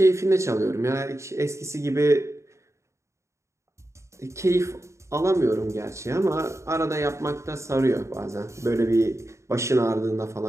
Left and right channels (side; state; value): left; late; 0.14 ms